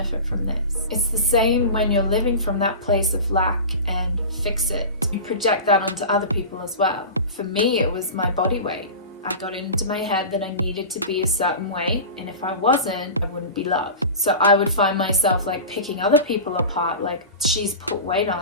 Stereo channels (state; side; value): inverted; both; correlation -0.30